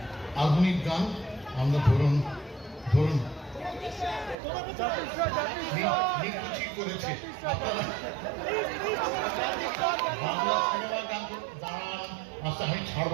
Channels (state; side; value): drops out; left; at 4.4 s